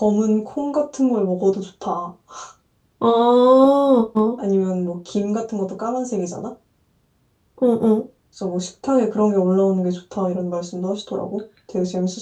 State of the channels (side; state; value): both; identical; correlation 1.00